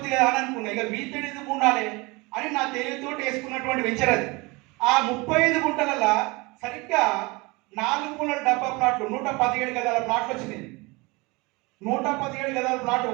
కదా అని అనుకున్నా. ఇక వీటిని ఎందుకు ఉండాలి అని నా తెలివితో వేసుకున్నటువంటి వెంచర్ అది. ఆ 35 గుంటలలో సరిగ్గా 4 మూలల డబ్బా ప్లాట్లు 117 గదాల ప్లాట్లు వచ్చినాయి. 117 గదాల ప్లాట్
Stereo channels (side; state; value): left; quieter; 25.2 dB